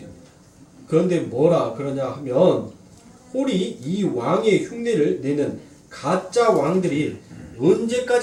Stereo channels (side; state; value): both; identical; correlation 1.00